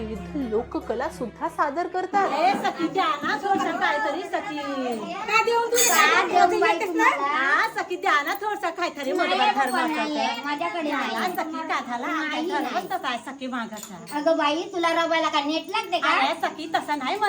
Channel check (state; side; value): identical; both; correlation 1.00